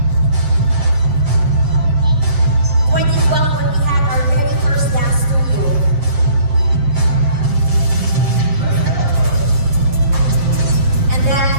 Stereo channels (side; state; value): left; late; 7.0 ms